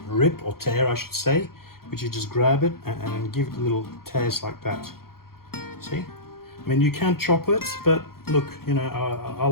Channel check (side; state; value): right; late; 0.93 ms